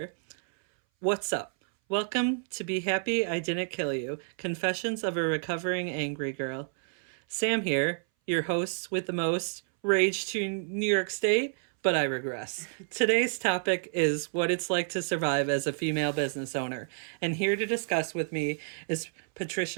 What's up? Welcome to Be Happy I Didn't Kill You, Confessions of a Recovering Angry Girl. Sam here, your host with the most rage to New York State, but I regress. Today's topic is what it's like to survive as a female business owner. And here to discuss with me is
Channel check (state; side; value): silent; left; 58 dB below the other